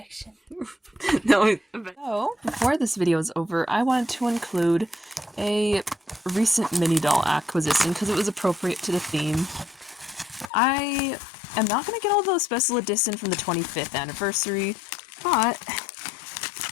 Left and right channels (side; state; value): right; drops out; at 10.5 s